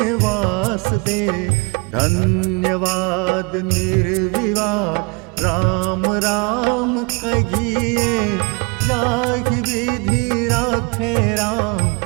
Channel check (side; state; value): left; quieter; 30.3 dB